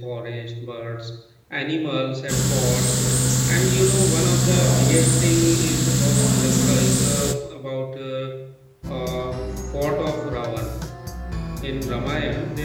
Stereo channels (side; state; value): both; identical; correlation 1.00